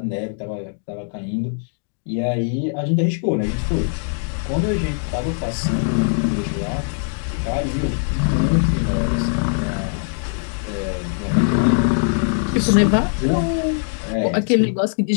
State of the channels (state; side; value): silent; right; digital silence